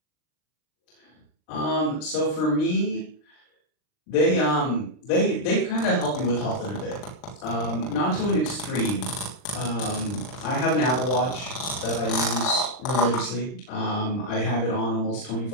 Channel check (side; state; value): right; late; 39 ms